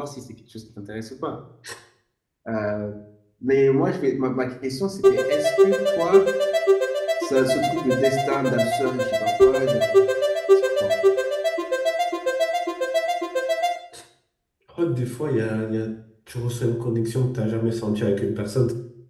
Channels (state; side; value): identical; both; correlation 1.00